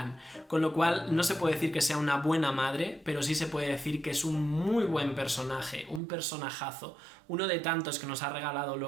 con lo cual no se puede decir que sea una buena madre, pero sí se puede decir que es un muy buen personaje, un personajazo, uno de tantos que nos ha regalado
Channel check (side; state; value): left; drops out; at 6.0 s